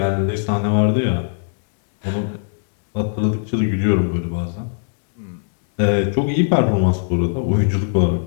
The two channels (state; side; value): silent; right; 66 dB below the other